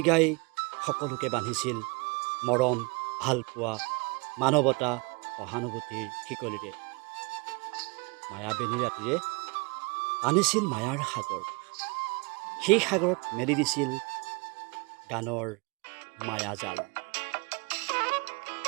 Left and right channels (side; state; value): left; quieter; 29.8 dB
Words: গাই সকলোকে বান্ধিছিল মৰম, ভালপোৱা, মানৱতা, সহানুভূতিৰ শিকলিৰে। মায়াবেনী ৰাতিৰে আনিছিল মায়াৰ সাগৰ, সেই সাগৰত মেলি দিছিল গানৰ মায়াজাল।